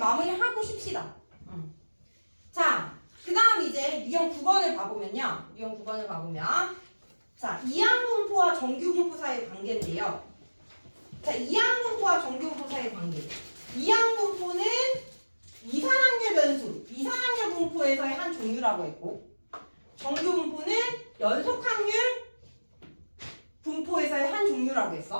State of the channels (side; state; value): both; inverted; correlation -1.00